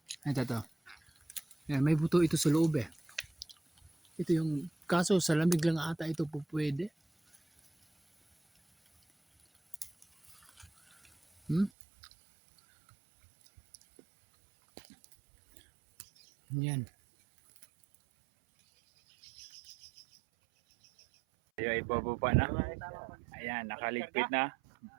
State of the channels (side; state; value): left; drops out; at 11.7 s